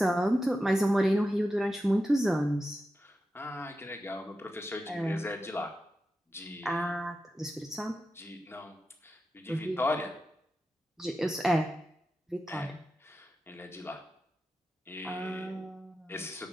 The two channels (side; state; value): both; normal; correlation 0.91